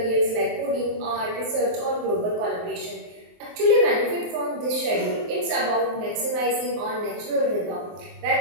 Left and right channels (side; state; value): left; late; 23 ms